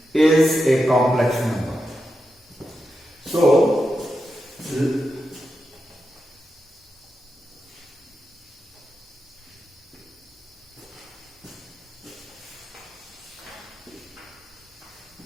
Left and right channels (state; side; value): normal; both; correlation 0.88